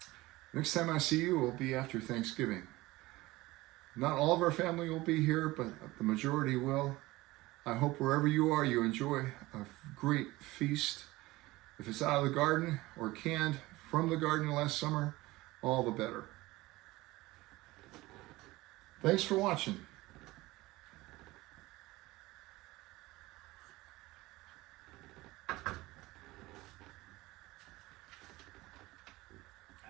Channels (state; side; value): quieter; left; 19.5 dB